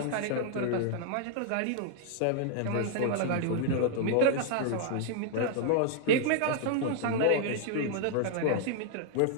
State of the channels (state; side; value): different; both; correlation -0.01